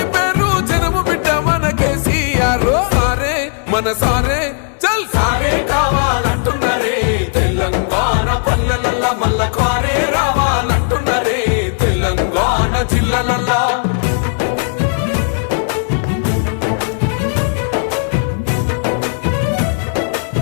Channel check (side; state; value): right; silent; 64 dB below the other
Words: పేరు జనము బిడ్డ మన కేసీఆర్ సారే మన సారే చల్ సారే కావాలంటున్నరే తెలంగాణ పల్లెలల్లా మల్ల కారే రావాలంటున్నరే తెలంగాణ జిల్లాలల్లా